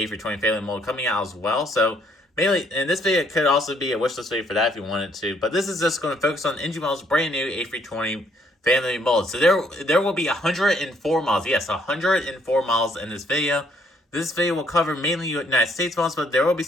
family mold coming out as well. So mainly, and this video could also be a wishlist video for that if you wanted to. But this is just going to focus on NG Miles' brand new A320 family mold. So there will be 104 miles. Yes, 104 miles in this video. This video will cover mainly United States models, but there will be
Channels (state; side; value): normal; both; correlation 0.67